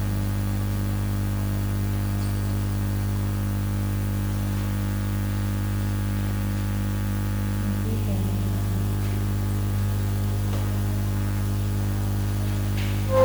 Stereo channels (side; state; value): both; identical; correlation 1.00